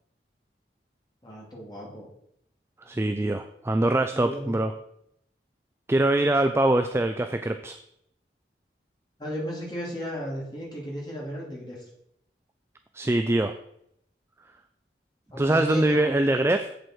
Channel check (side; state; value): both; normal; correlation 0.79